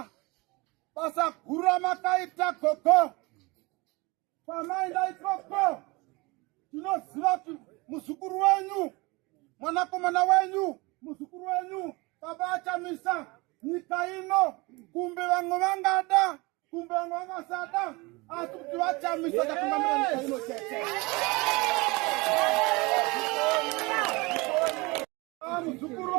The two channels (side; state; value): left; quieter; 25.0 dB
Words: basa guru ramakaita gogo pamaenda ikoko tinoziva kuti muzukuru wenyu mwanakomana wenyu muzukuru wenyu baba achamisa nyika ino kumbe vamwe vangada kumbe vamwe vangasada asi kuti vachamisa tatungamira nyika ino chete. Muzukuru